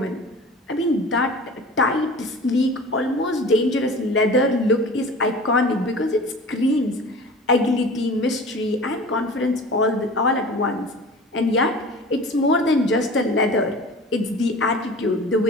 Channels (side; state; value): both; normal; correlation 0.39